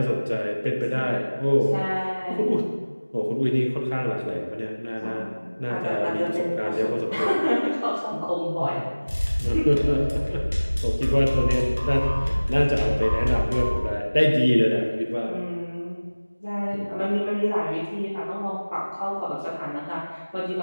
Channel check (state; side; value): inverted; both; correlation -1.00